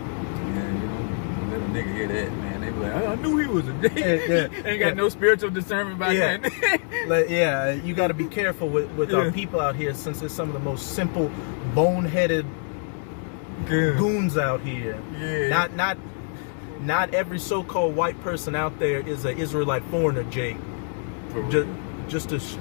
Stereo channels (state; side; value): silent; right; 55 dB below the other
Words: you know, let a nigga hear that, man. They be like, I knew he was a Jake. Ain't got no spiritual discernment about that. Yeah, you got to be careful with our people out here, since it's some of the most simple, boneheaded goons out here. Yeah. Not every so-called white person out there is an Israelite foreigner, Jake. Just to